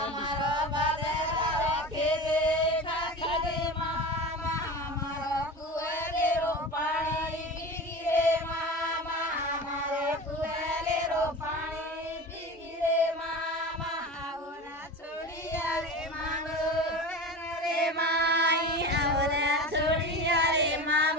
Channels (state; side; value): normal; both; correlation 0.31